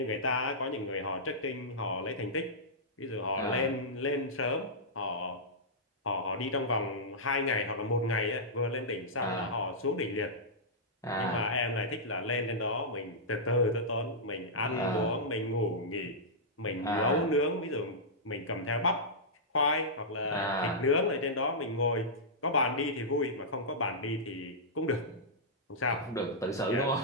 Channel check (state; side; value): normal; both; correlation -0.13